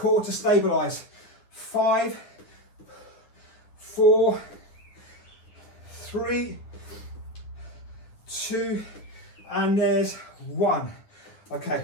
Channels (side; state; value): right; late; 9.6 ms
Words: to stabilize. 5, 4, 3, 2, and there's 1. Okay,